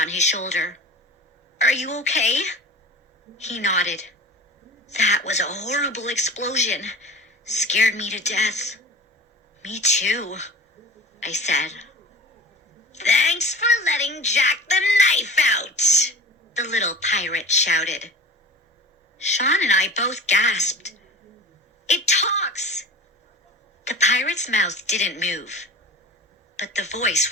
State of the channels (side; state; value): both; normal; correlation 0.38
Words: his shoulder. "Are you okay?" He nodded. "That was a horrible explosion. Scared me to death." "Me too," I said. "Thanks for letting Jack the Knife out," the little pirate shouted. Sean and I both gasped. "It talks!" The pirate's mouth didn't move, but the voice